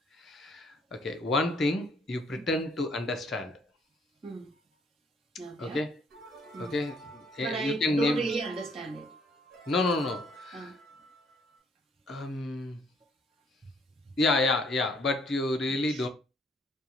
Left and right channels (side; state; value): both; normal; correlation 0.65